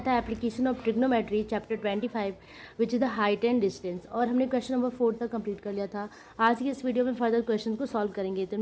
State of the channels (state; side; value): identical; both; correlation 1.00